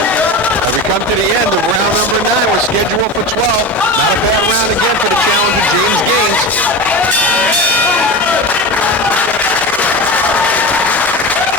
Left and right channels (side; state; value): both; normal; correlation 0.26